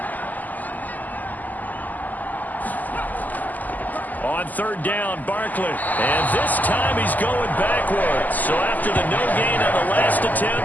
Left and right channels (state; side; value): late; right; 0.082 ms